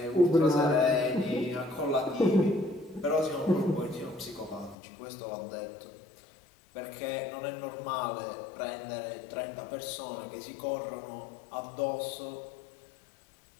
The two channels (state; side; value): drops out; right; at 4.8 s